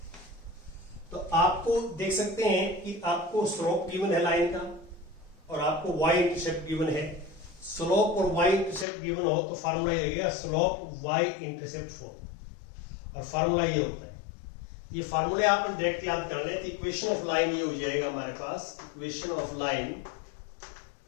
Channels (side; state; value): right; drops out; at 8.8 s